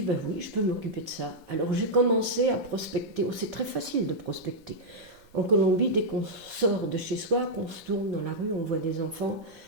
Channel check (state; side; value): normal; both; correlation -0.06